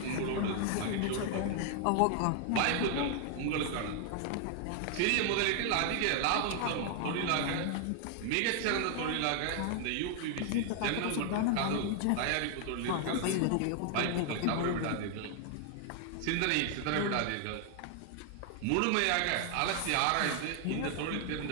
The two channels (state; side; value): different; both; correlation 0.00